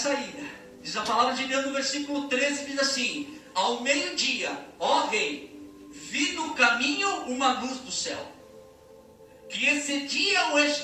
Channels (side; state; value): both; identical; correlation 1.00